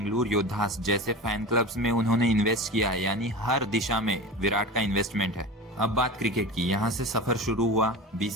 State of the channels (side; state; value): both; normal; correlation 0.30